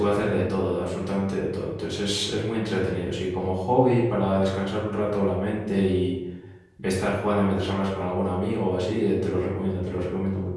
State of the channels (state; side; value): identical; both; correlation 1.00